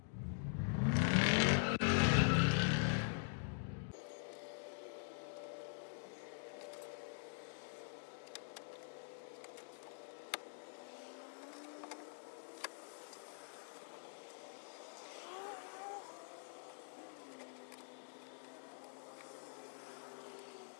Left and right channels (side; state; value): right; silent; digital silence